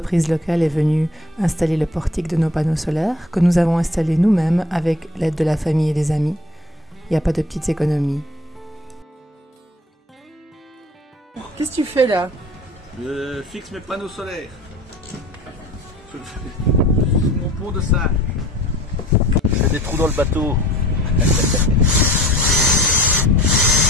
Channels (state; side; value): normal; both; correlation 0.47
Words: locale est venue installer le portique de nos panneaux solaires que nous avons installés nous-mêmes avec l'aide de la famille et des amis. Il n'y a pas de petites économies. Qu'est-ce que tu fais là? Je fixe mes panneaux solaires. Sur mon pont de singe. Je fais des trous dans le bateau.